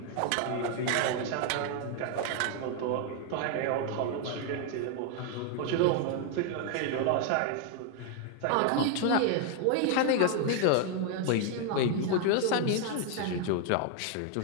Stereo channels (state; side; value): different; both; correlation 0.00